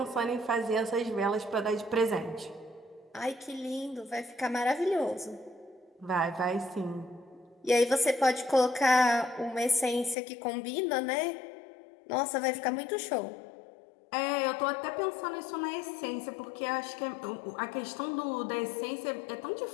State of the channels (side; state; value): right; drops out; at 10.2 s